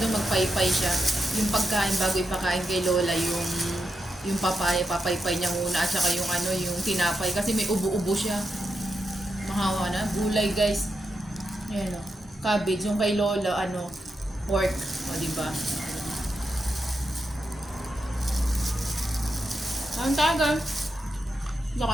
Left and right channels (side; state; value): both; normal; correlation 0.86